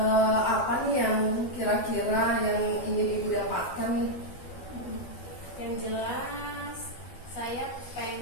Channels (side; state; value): right; late; 12 ms